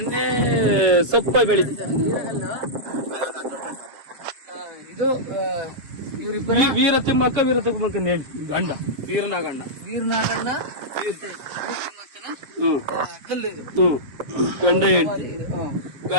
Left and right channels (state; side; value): late; left; 7.6 ms